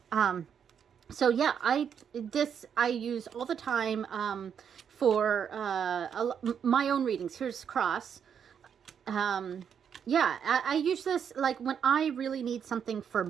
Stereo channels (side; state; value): left; quieter; 7.7 dB